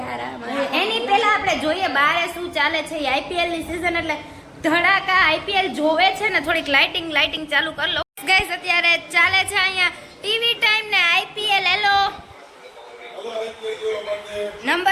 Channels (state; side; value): identical; both; correlation 1.00